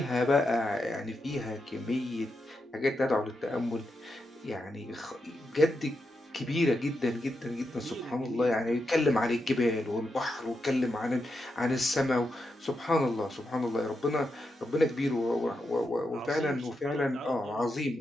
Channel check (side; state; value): both; normal; correlation 0.85